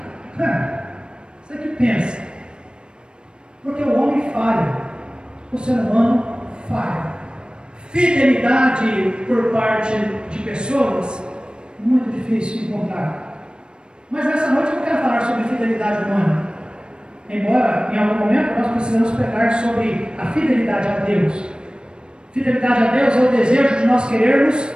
Você que pensa. Porque o homem falha, o ser humano falha. Fidelidade por parte de pessoas, muito difícil de encontrar. Mas nessa noite eu não quero falar sobre fidelidade humana. Embora em algum momento nós precisamos pregar sobre a fidelidade a Deus. Fidelidade a Deus é o desejo de nós querermos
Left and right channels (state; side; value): late; left; 0.052 ms